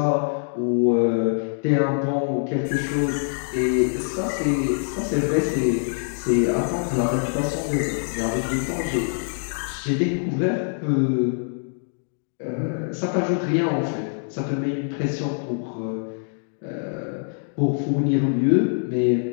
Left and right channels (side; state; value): right; silent; digital silence